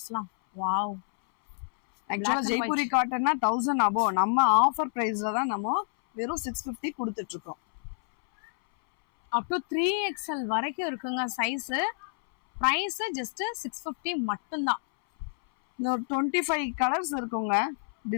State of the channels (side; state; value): right; silent; 59 dB below the other